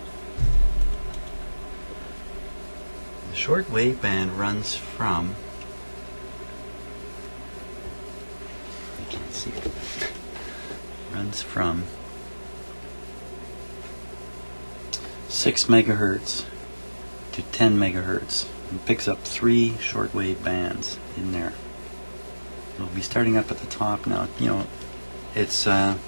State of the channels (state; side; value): inverted; both; correlation -1.00